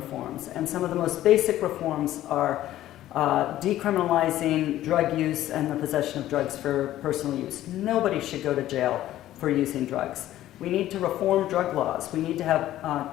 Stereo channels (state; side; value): quieter; right; 13.7 dB